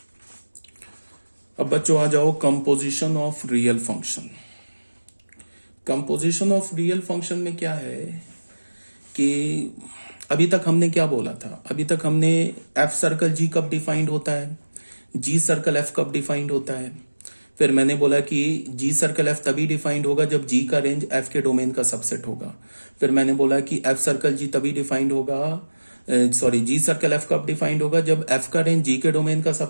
अब बच्चों आ जाओ composition of real function. Composition of real function में क्या है कि अभी तक हमने क्या बोला था, अभी तक हमने एफ सर्कल जी कब डिफाइंड होता है, जी सर्कल एफ कब डिफाइंड होता है। फिर मैंने बोला कि जी सर्कल एफ तभी डिफाइंड होगा जब जी का रेंज एफ के डोमेन का सबसेट होगा। फिर मैंने बोला कि एफ सर्कल जी तभी डिफाइंड होगा, सॉरी जी सर्कल एफ कब डिफाइंड होगा, जब एफ का रेंज जी के डोमेन का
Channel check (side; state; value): both; inverted; correlation -1.00